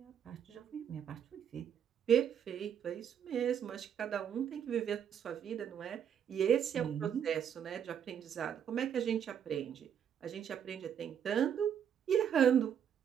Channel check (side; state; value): left; quieter; 8.6 dB